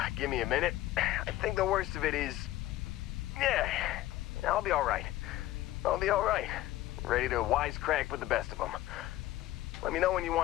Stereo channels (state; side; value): quieter; right; 15.2 dB